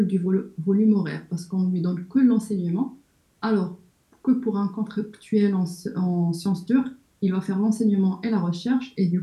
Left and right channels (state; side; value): identical; both; correlation 1.00